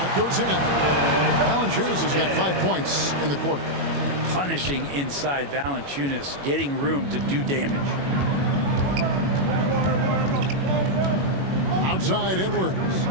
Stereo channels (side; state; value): left; late; 21 ms